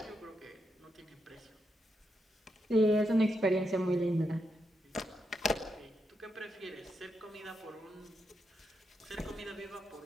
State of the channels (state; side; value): normal; both; correlation 0.84